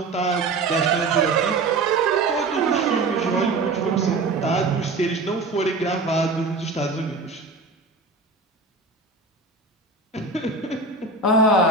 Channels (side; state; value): left; quieter; 3.6 dB